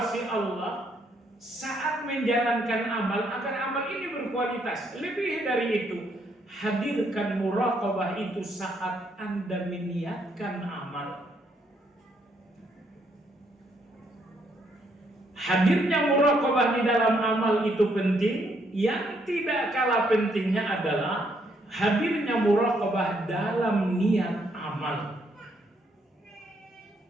Allah saat menjalankan amal agar amal ini berkualitas. Lebih dari itu, hadirkan muraqabah itu saat Anda meniatkan amal. Hadirnya muraqabah di dalam amal itu penting. Yang tidak kalah pentingnya adalah hadirnya muraqabah dalam niat amal.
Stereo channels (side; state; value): both; normal; correlation 0.72